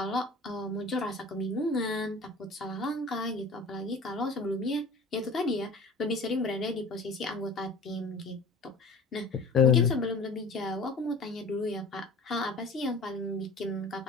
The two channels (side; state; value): right; quieter; 3.2 dB